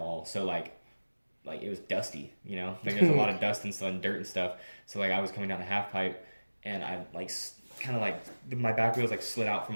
So like it was dusty, you know, like there's a lot of dust and stuff and dirt and stuff. So like I was coming down the half pipe, and I like kind of like my back wheels like slid out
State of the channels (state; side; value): inverted; both; correlation -1.00